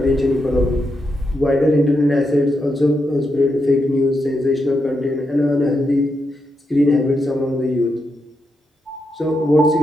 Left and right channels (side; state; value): both; normal; correlation 0.84